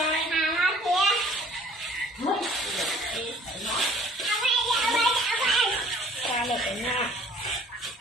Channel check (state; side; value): normal; both; correlation 0.53